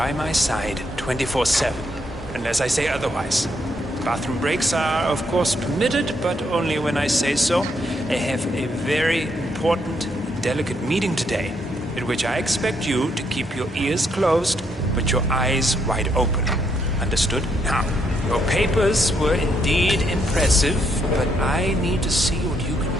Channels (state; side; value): normal; both; correlation 0.75